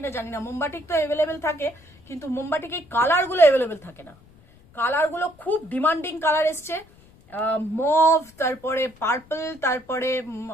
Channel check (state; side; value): noise; left; rumble, 27 dB below the sound